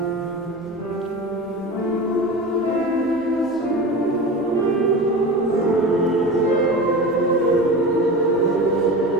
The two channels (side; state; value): both; normal; correlation 0.30